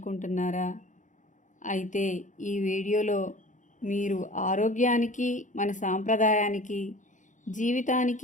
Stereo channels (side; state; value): right; late; 0.36 ms